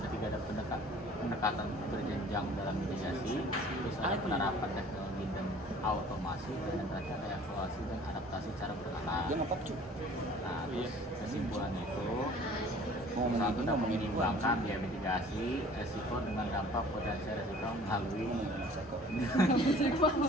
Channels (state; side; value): normal; both; correlation 0.50